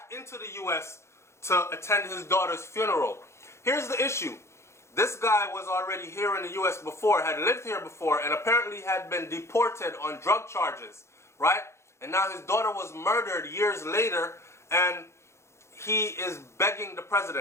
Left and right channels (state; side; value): late; right; 0.13 ms